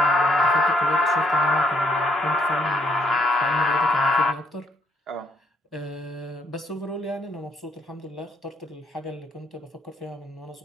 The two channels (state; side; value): normal; both; correlation 0.71